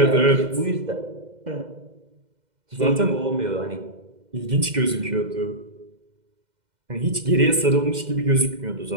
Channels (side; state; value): left; late; 2.1 ms